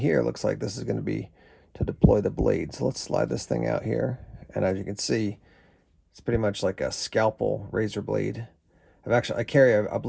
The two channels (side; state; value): both; identical; correlation 1.00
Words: looks like this is going to be to deploy the blade. So let's slide this thing out here. And as you can see, it's pretty much like a scalpel razor blade. I carry a